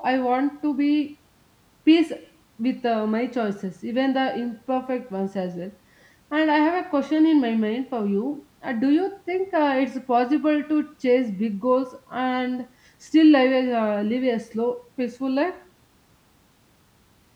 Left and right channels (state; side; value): identical; both; correlation 1.00